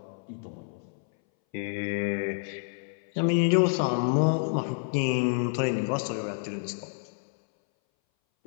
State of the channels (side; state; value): right; silent; 59 dB below the other